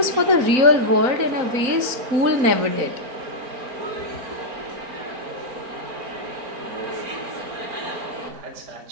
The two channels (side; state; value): left; late; 4.0 ms